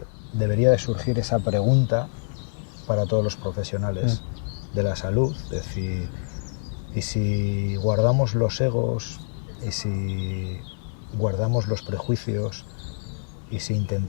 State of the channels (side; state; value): right; silent; 61 dB below the other